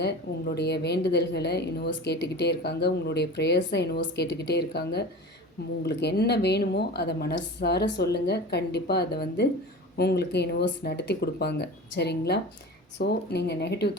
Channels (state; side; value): normal; both; correlation 0.34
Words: உங்களுடைய வேண்டுதல்களை யூனிவர்ஸ் கேட்டுக்கிட்டே இருக்காங்க. உங்களுடைய ப்ரேயர்ஸை யூனிவர்ஸ் கேட்டுக்கிட்டே இருக்காங்க. உங்களுக்கு என்ன வேணுமோ அதை மனசார சொல்லுங்கள். கண்டிப்பாக அதை வந்து உங்களுக்கு யூனிவர்ஸ் நடத்தி கொடுப்பாங்க. சரிங்களா? ஸோ நீங்கள் நெகட்டிவ்